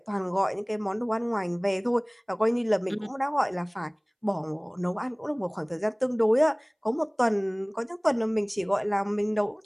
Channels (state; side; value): identical; both; correlation 1.00